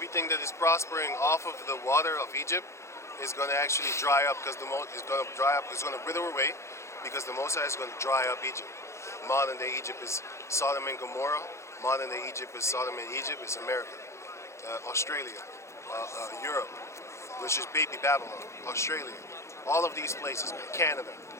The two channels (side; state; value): right; late; 0.14 ms